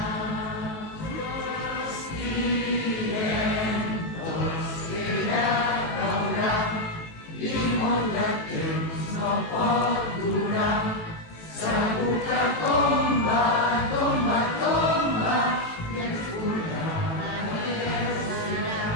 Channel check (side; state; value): right; late; 18 ms